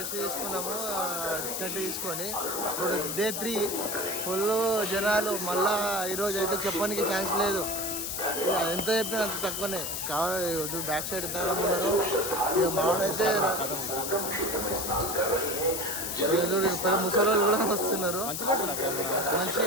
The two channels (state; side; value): noise; left; hiss, 3 dB below the sound